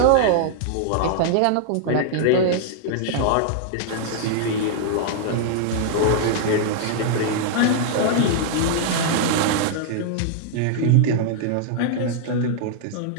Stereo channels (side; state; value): both; different; correlation -0.01